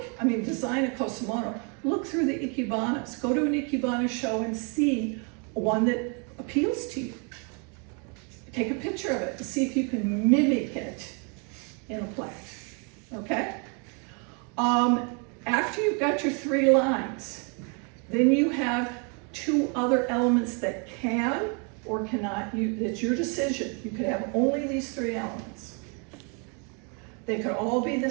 design a Kusamono, look through the ikebanas. Go to an ikebana show and see one that appeals to you. Take a picture of it and see if you can mimic it in a plant. Okay? After you've got your 3 lines, then you have 2 other elements that can or cannot, it's your decision. You could have only these 3 elements. They could all be the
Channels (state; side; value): quieter; left; 36.6 dB